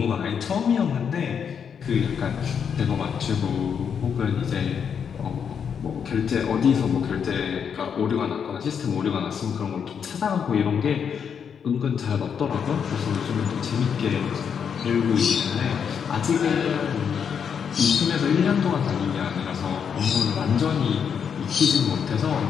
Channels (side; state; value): right; quieter; 7.2 dB